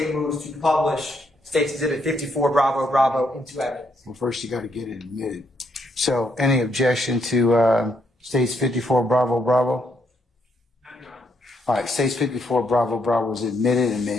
moves to publish State's Exhibit 54 Bravo Bravo into evidence. Well, first you got to get it admitted. So, any objection to States 54 Bravo Bravo? All right, States 54 Bravo Bravo is admitted and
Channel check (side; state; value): both; normal; correlation 0.74